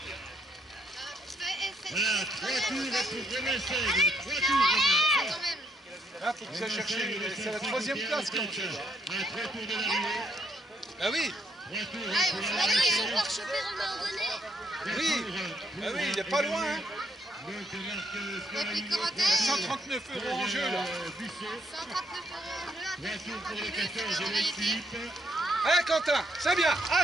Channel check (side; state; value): both; normal; correlation 0.71